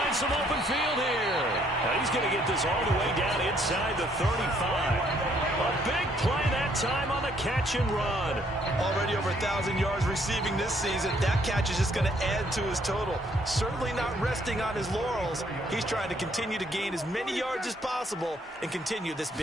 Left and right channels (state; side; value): normal; both; correlation 0.67